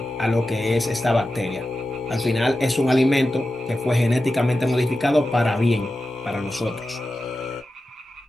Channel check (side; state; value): both; normal; correlation 0.92